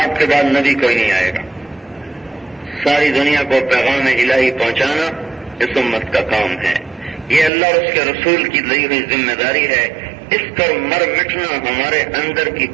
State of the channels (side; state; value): left; drops out; at 7.5 s